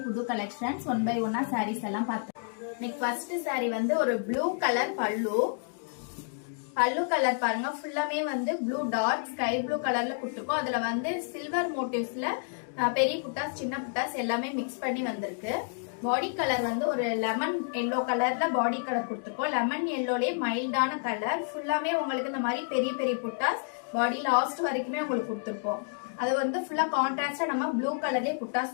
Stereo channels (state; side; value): silent; right; 58 dB below the other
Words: புது collections 1 by 1 sarees எல்லாம் பார்த்தோம். இன்னைக்கு first saree வந்து ஒரு blue color பல்லு கலர் பாருங்க, ஃபுல்லாமே வந்து blue dot sky blue கலர்ல கொடுத்திருக்கோம். அதுல வந்து silver motifsல பெரிய புட்டாஸ் சின்ன புட்டாஸ் எல்லாமே mix பண்ணி வந்திருக்கு. பாடி கலர் வந்து ஒரு லெமன் எல்லோ கலர்ல பாடி கலர் கொடுத்திருக்கோம். லெமன் எல்லோலயே மைல்டான கலர், ஃபுல்லாமே உங்களுக்கு இந்த மாதிரி பெரிய பெரிய புட்டாஸ் பாடி லாஸ்ட் வரைக்குமே உங்களுக்கு கொடுத்திருக்கோம். அது வந்து ஃபுல்லா கான்ட்ராஸ்டா நம்ம ப்ளூ கலர்லயே